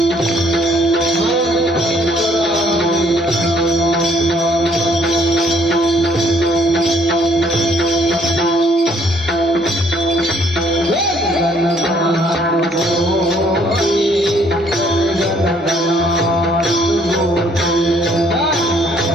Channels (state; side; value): normal; both; correlation 0.64